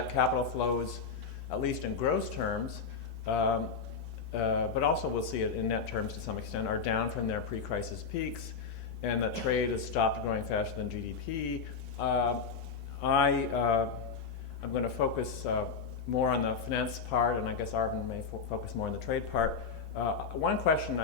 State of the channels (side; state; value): right; quieter; 5.4 dB